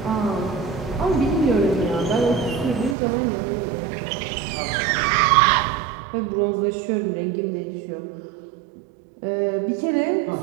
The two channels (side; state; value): left; drops out; at 3.0 s